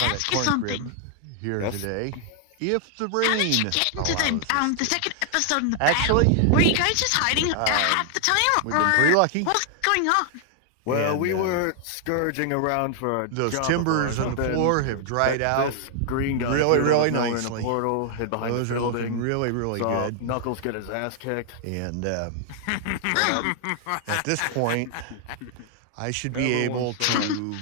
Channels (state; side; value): different; both; correlation 0.00